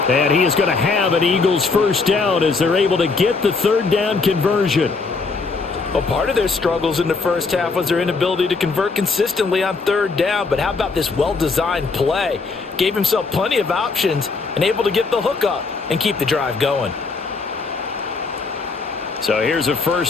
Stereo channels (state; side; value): quieter; right; 4.3 dB